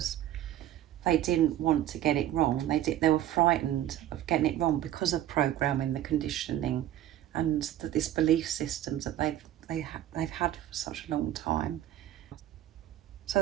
they didn't want to get it wrong. They were frightened of getting it wrong because of programming, the conditioning, and this belief systems that they've had for such a long time. So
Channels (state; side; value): quieter; left; 12.6 dB